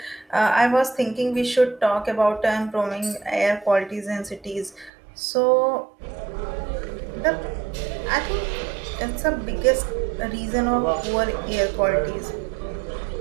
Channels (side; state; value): left; drops out; at 4.9 s